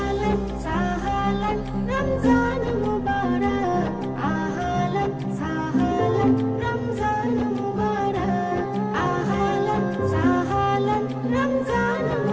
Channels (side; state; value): both; identical; correlation 1.00